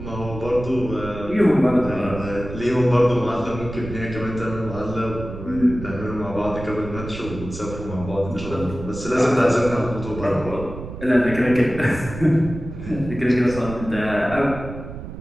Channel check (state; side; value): noise; right; rumble, 10 dB below the sound